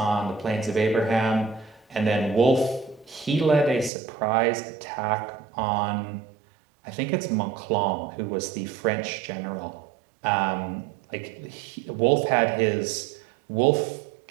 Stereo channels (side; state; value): left; drops out; at 3.9 s